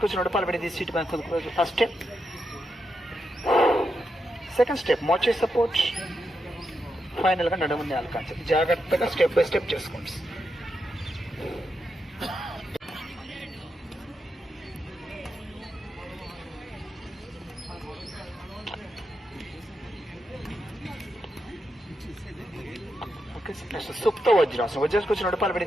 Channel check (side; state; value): both; normal; correlation 0.85